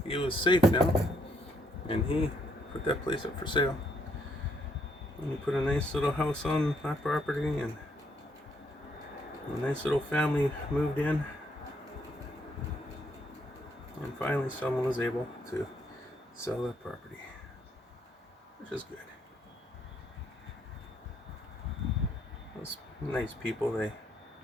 he was safe now, and he put that place up for sale. We put a nice little house on that property, and a nice little family moved in. And finally someone was able to sell that property, which is good. Those nice people, they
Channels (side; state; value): both; normal; correlation 0.72